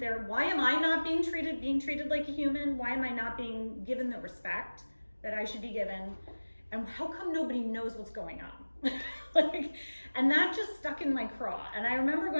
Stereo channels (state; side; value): inverted; both; correlation -1.00